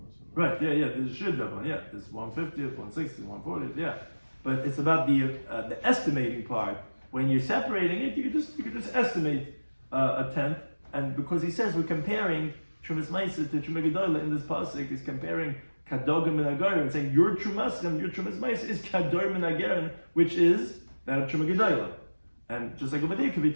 Right. Yeah. There's a shear davan. Yeah. There's 150th, 160th, 140th. Yeah. But it's about the estimating part. When you're separating it, you could just estimate a tenth. And because he says we're comparing Trumas Meiser to Truma Gedolah in this pasuk, he's comparing Kadogim and Agarim, and saying your Trumas Meiser is Kadogim and Agarim, which is that of Truma Gedolah. And just like over there could be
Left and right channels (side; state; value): both; inverted; correlation -1.00